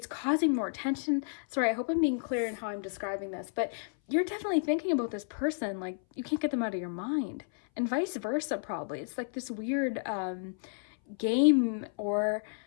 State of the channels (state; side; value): silent; right; 57 dB below the other